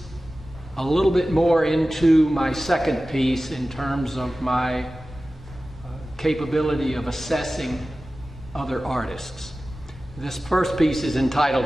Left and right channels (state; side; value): normal; both; correlation 0.96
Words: a little bit more into my second piece in terms of my capability of assessing other artists. This first piece is